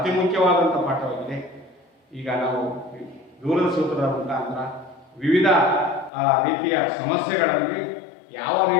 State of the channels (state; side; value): drops out; right; at 6.1 s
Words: ಮುಖ್ಯವಾದಂಥ ಪಾಠವಾಗಿದೆ. ಈಗ ನಾವು ದೂರದ ಸೂತ್ರದ ಮುಖಾಂತರ ವಿವಿಧ ರೀತಿಯ ಸಮಸ್ಯೆಗಳಲ್ಲಿ ಯಾವ